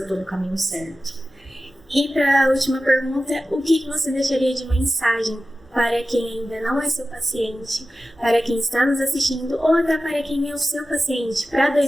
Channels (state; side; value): normal; both; correlation 0.94